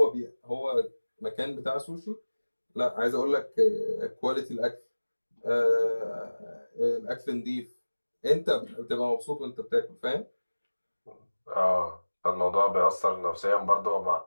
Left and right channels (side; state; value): both; inverted; correlation -1.00